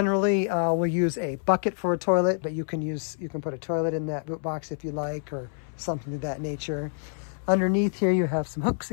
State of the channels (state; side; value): silent; right; 60 dB below the other